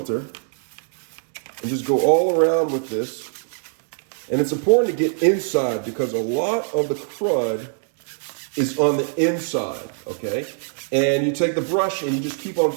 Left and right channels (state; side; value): silent; left; 64 dB below the other